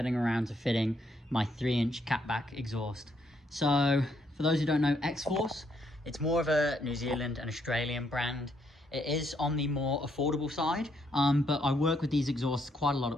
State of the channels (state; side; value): normal; both; correlation 0.73